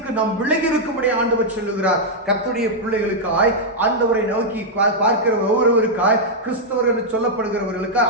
நாம் விலகி இருக்கும்படி ஆண்டவர் சொல்லுகிறார். கர்த்தருடைய பிள்ளைகளுக்காய், ஆண்டவரை நோக்கி பார்க்கிற ஒவ்வொருவருக்காய், கிறிஸ்தவர்கள் என்று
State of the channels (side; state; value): both; normal; correlation -0.04